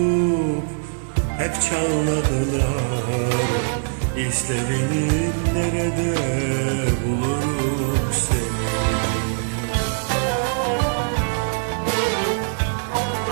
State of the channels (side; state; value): left; silent; digital silence